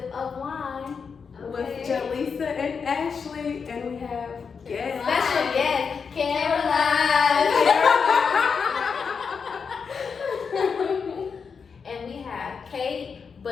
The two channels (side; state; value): right; quieter; 5.8 dB